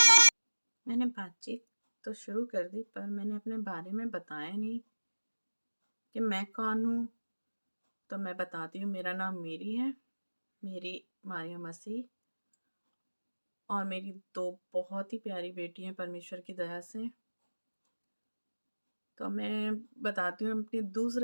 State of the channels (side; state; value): both; inverted; correlation -1.00